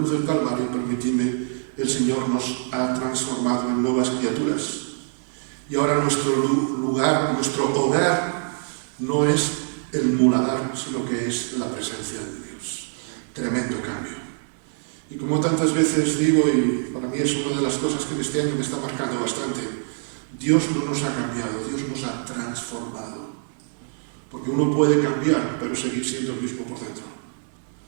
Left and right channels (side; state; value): left; silent; 60 dB below the other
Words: del Calvario, permitidme, el Señor nos ha transformado en nuevas criaturas. Y ahora nuestro lugar, nuestro hogar, no es el muladar, sino que es la presencia de Dios. Tremendo cambio. Y como tantas veces digo, y para mí es una de las cosas que este año me está marcando bastante, Dios no nos ha cambiado, Dios nos ha transformado. Porque uno puede cambiar, pero seguir siendo el mismo por dentro.